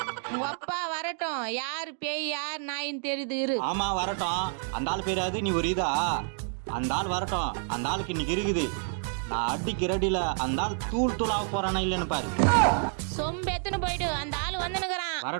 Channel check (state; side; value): silent; left; 56 dB below the other